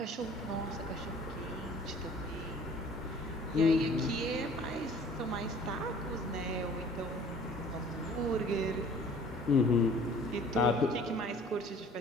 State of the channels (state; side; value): normal; both; correlation 0.50